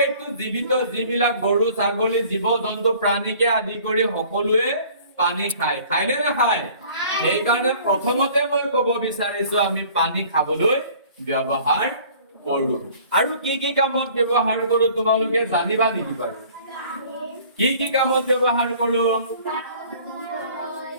জীৱিত যিবিলাক গৰু ছাগলী জীৱ জন্তু প্ৰাণীকে আদি কৰি সকলোৱে পানী খায় নে নাখায় সেইকাৰণে প্ৰথমতে মই ক'ব বিচাৰিছো আমি পানী খাবলৈ ব্যৱহাৰ কৰো আৰু কি কামত ব্যৱহাৰ কৰো তোমালোকে জানিবা নেকি বাৰু কি কামত ব্যৱহাৰ কৰো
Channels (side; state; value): both; inverted; correlation -0.51